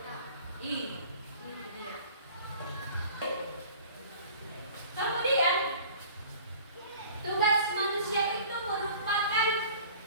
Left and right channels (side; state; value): both; inverted; correlation -0.46